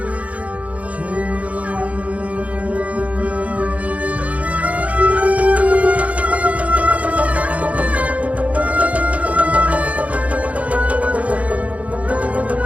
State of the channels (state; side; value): late; left; 0.068 ms